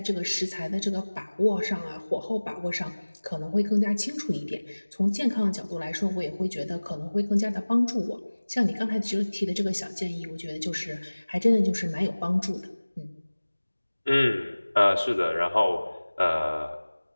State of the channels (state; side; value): inverted; both; correlation -1.00